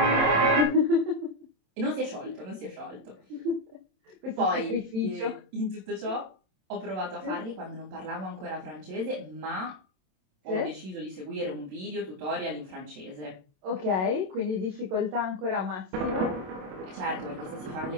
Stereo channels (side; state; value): left; late; 27 ms